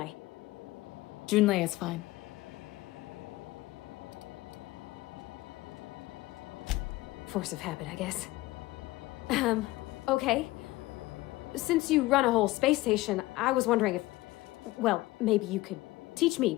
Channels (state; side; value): quieter; right; 18.7 dB